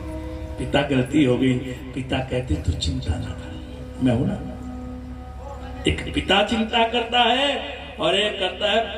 पिता गलती हो गई, पिता कहते तू चिंता ना कर, मैं हूं ना। एक पिता चिंता करता है और एक करता है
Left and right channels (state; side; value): identical; both; correlation 1.00